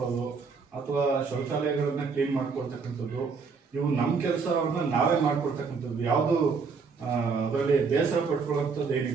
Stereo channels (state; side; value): quieter; left; 5.1 dB